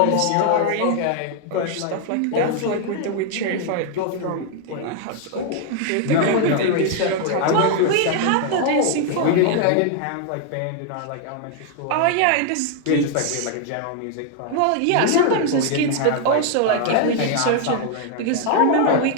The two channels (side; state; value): both; different; correlation 0.00